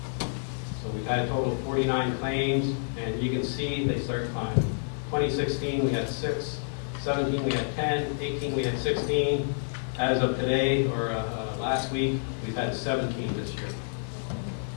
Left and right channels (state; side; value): silent; right; digital silence